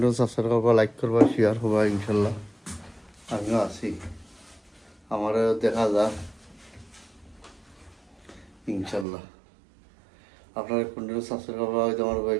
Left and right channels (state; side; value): drops out; left; at 9.1 s